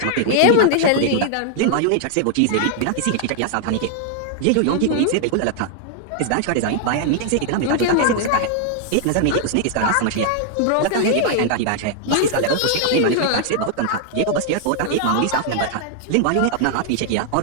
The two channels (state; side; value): different; both; correlation 0.00